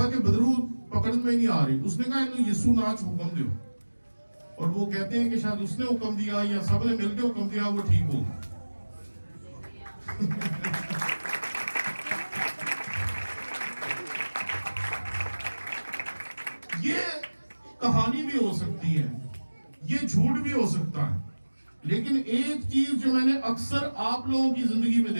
کہ بدرو پکڑ میں نہیں آ رہی. اس نے کہا انہوں یسوع ناچ حکم دیو. اور وہ کہتے ہیں کہ شاید اس نے حکم دیا یا سب نے مل کے حکم دیا، وہ ٹھیک ہو. یہ کہانی بھی ہو سکتی ہے، یہ جھوٹ بھی ہو سکتا ہے، لیکن ایک چیز جو میں نے اکثر آپ لوگوں کی زندگی میں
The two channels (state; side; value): inverted; both; correlation -1.00